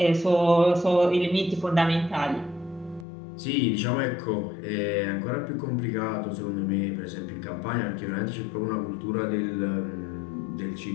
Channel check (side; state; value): right; drops out; at 3.1 s